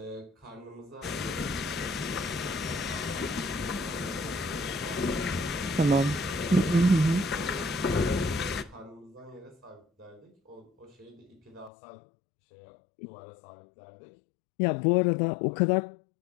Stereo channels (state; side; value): drops out; right; at 11.7 s